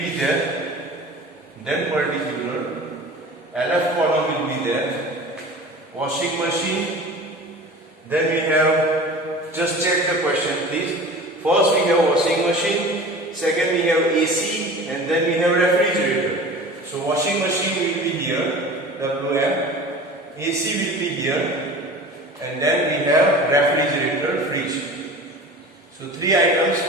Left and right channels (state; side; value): normal; both; correlation 0.38